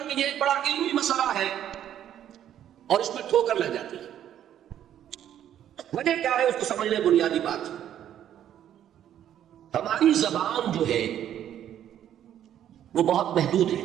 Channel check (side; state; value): left; quieter; 10.7 dB